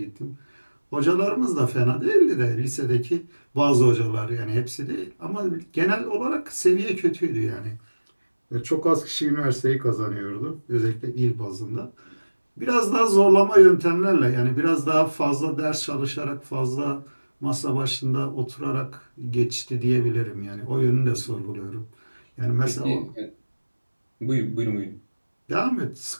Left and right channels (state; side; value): inverted; both; correlation -1.00